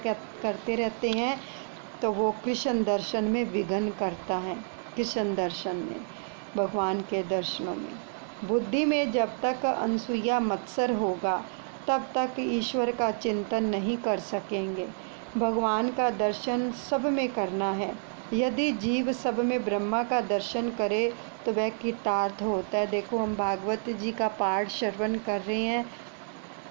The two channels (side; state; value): left; silent; 58 dB below the other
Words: रहते हैं, तो वो कृष्ण दर्शन में विघ्न करता है। कृष्ण दर्शन में, भगवान के दर्शनों में, बुद्धि में जब तक अनसूया मत्सर होगा तब तक ईश्वर का चिंतन नहीं कर सकेंगे। भगवान का दर्शन सब में करना है। यदि जीव सब में ब्रह्मा का दर्शन करे तो वह कृतार्थ होता है। देखो, हम भागवत जी का पाठ श्रवण कर रहे हैं